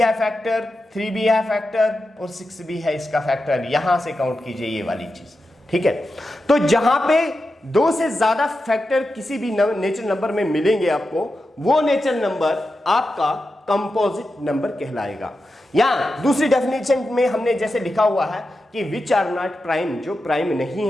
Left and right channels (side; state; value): both; normal; correlation 0.90